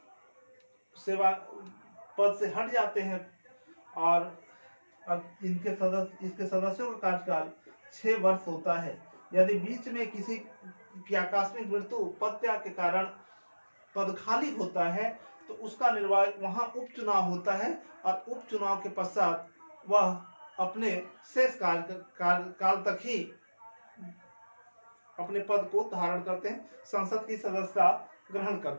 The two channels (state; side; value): inverted; both; correlation -1.00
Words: सेवा पद से हट जाते हैं, और इसके सदस्यों का कार्यकाल 6 वर्ष होता है। यदि बीच में किसी की आकस्मिक मृत्यु, पद त्याग के कारण पद खाली होता है तो उसका वहां उपचुनाव होता है, और उपचुनाव के पश्चात वह अपने शेष काल तक ही अपने पद को धारण करते हैं, संसद की सदस्यता ग्रहण